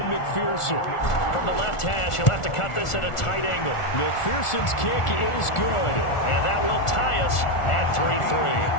McPherson. From the left hash, he'll have to cut this at a tight angle. McPherson's kick is good, and that will tie us at 3-3.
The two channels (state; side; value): late; right; 1.4 ms